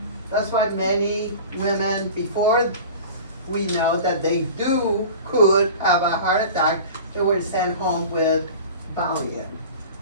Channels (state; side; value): inverted; both; correlation -0.37